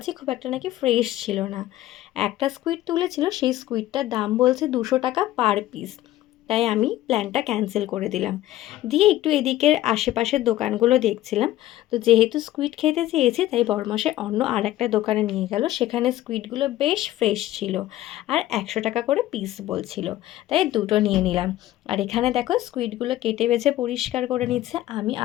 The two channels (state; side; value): quieter; right; 14.6 dB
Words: খুব একটা নাকি ফ্রেশ ছিল না। একটা স্কুইড তুলেছিল, সেই স্কুইডটার দাম বলছে 200 টাকা পার পিস। তাই আমি প্ল্যানটা ক্যান্সেল করে দিলাম। দিয়ে একটু এদিকের আশেপাশের দোকানগুলো দেখছিলাম। তো যেহেতু স্কুইড খেতে চেয়েছি, তাই বড়মশাই অন্য আর একটা দোকানে নিয়ে গেল। সেখানে স্কুইডগুলো বেশ ফ্রেশ ছিল আর 100 টাকা করে পিস বলছিল, তাই দুটো নিয়ে নিলাম। আর এখানে দেখো স্কুইডগুলো কেটে বেছে পরিষ্কার করে নিচ্ছে। আমি